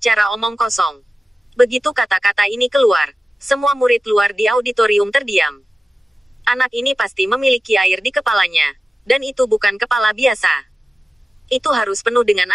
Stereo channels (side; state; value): both; normal; correlation 0.95